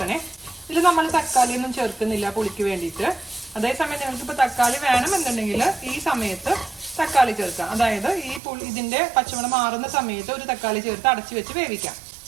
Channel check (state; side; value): drops out; left; at 8.4 s